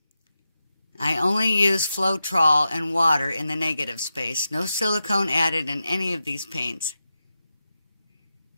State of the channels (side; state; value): both; inverted; correlation -0.90